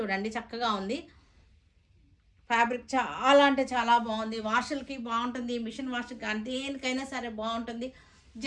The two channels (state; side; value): identical; both; correlation 1.00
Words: చూడండి, చక్కగా ఉంది. ఫ్యాబ్రిక్ చాలా అంటే చాలా బాగుంది. వాషులకి బాగుంటుంది, మిషన్ వాష్కి కానీ దేనికైనా సరే బాగుంటుంది.